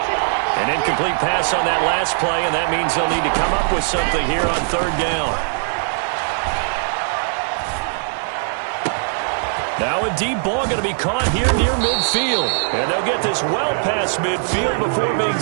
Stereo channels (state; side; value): silent; left; 66 dB below the other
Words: An incomplete pass on that last play, and that means they'll need to come up with something here on third down. Now a deep ball going to be caught here near midfield. And they'll get this well past midfield before being